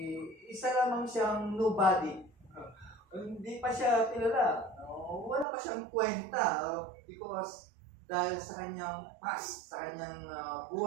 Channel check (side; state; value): left; drops out; at 5.5 s